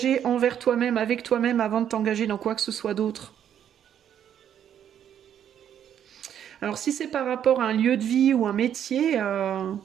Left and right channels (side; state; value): left; quieter; 9.6 dB